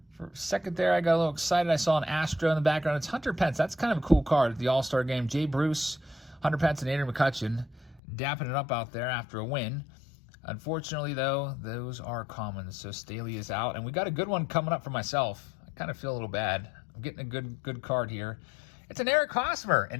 for a second there, I got a little excited. I saw an Astro in the background. It's Hunter Pence. That's kind of a cool card at the All-Star game. Jay Bruce, Hunter Pence, and Adrian McCutcheon dapping it up out there after a win. Unfortunately, though, those are common, so Staley is out. And we got a good one coming up for myself. I kind of feel a little bad. I'm getting a good card here. It's an Eric Hosmer.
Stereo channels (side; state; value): right; drops out; at 8.0 s